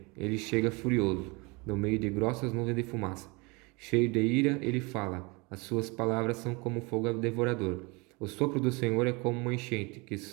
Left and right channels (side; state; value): left; quieter; 27.4 dB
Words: Ele chega furioso, no meio de grossas nuvens de fumaça. Cheio de ira, ele fala. As suas palavras são como fogo devorador. O sopro do Senhor é como uma enchente, que